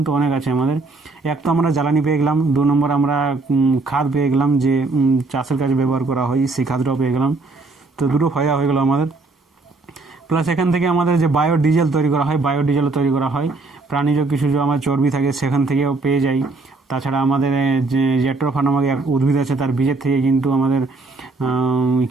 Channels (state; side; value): quieter; left; 3.5 dB